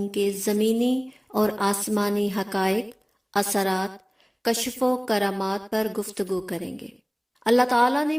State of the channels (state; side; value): identical; both; correlation 1.00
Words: کے زمینی اور آسمانی حقائق، اثرات، کشف و کرامات پر گفتگو کریں گے۔ اللہ تعالیٰ نے